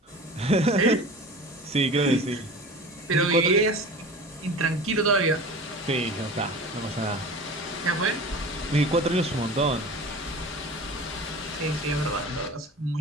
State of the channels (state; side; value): normal; both; correlation 0.36